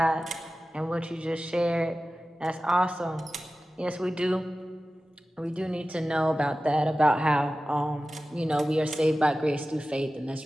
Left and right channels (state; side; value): normal; both; correlation 0.95